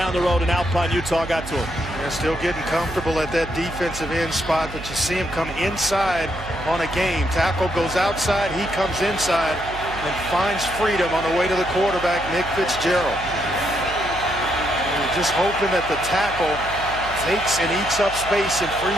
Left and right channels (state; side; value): noise; right; hum, 13 dB below the sound